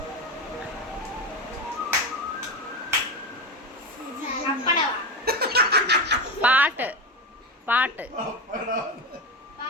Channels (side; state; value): both; normal; correlation 0.18